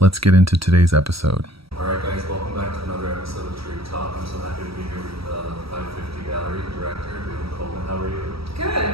Let's get into today's episode. All right, guys, welcome back to another episode of Tarek Talk. I'm so happy to be here with the 550 Gallery director, David Coleman. How are you?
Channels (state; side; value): late; left; 0.76 ms